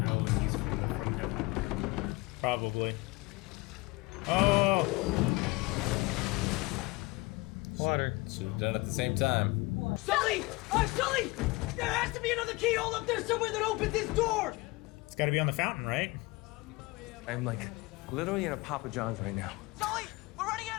and he's from the from heaven? Probably. Oh! Water. Should have done it at the same time. Sully! Sully! There has to be another keyhole up there somewhere that opens this door! It's got to be on the fountain, right? I'm like literally in a Papa John's right now. Sully! We're running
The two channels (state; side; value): quieter; right; 23.1 dB